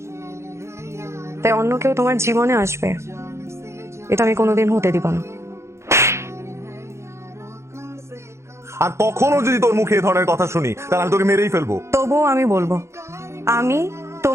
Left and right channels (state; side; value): late; left; 0.13 ms